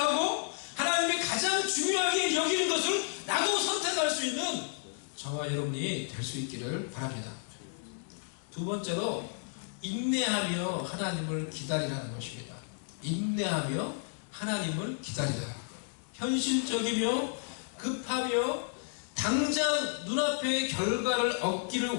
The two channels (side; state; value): right; silent; 56 dB below the other